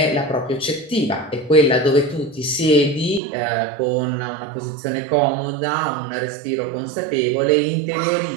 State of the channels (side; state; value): left; drops out; at 3.2 s